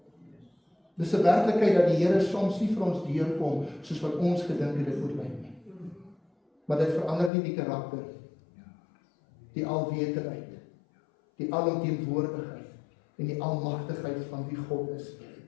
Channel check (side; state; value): right; drops out; at 7.3 s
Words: Dit is 'n werklikheid dat die Here soms nie vir ons deurkom soos wat ons gedink het dit moet lyk nie. Maar dit verander nie die karakter, die alwetendheid, die alomteenwoordigheid en die almagtigheid van wie God is.